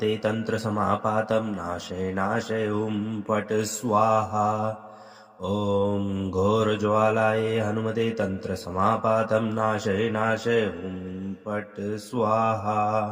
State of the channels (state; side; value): identical; both; correlation 1.00